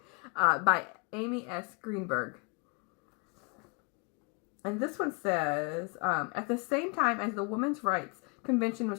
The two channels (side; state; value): right; quieter; 34.3 dB